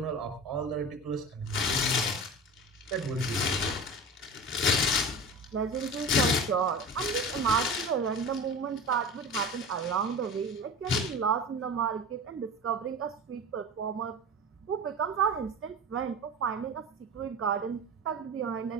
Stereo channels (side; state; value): both; normal; correlation 0.31